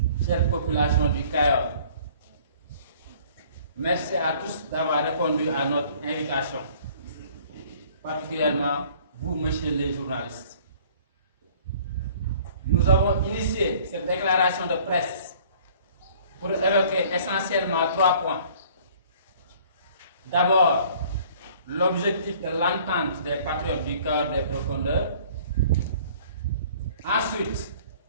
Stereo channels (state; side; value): inverted; both; correlation -0.53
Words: chère population du Cayor. Merci à tous d'avoir répondu à notre invitation, particulièrement vous, messieurs les journalistes. Nous avons initié cette déclaration de presse pour évoquer essentiellement 3 points. D'abord, l'objectif de l'entente des patriotes du Cayor des profondeurs. Ensuite,